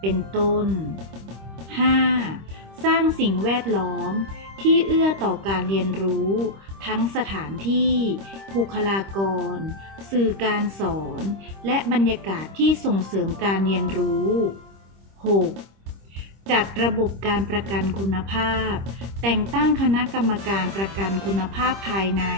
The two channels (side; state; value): left; late; 26 ms